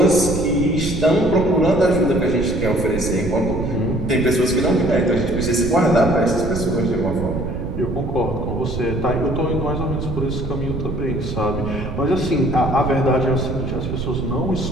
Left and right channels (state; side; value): noise; right; rumble, 5 dB below the sound